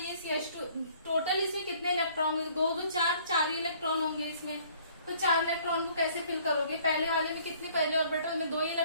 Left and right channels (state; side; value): inverted; both; correlation -0.58